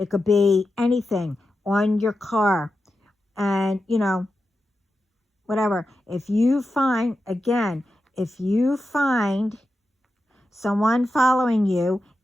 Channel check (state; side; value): normal; both; correlation 0.90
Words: could be anything on your car. And, whatever. If you find someone following you